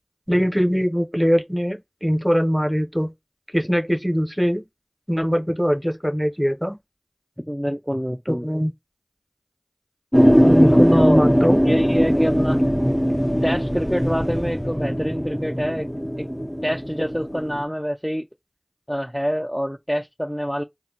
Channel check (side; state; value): both; identical; correlation 1.00